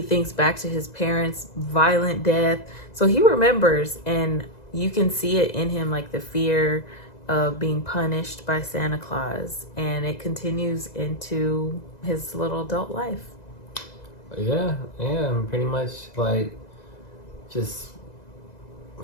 back to his parents' violent death. So he remembers, and you can see it in him, like the fear of being punished by Santa Claus, and it continues into his little adult life. Yeah, pretty much like just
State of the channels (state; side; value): late; right; 2.0 ms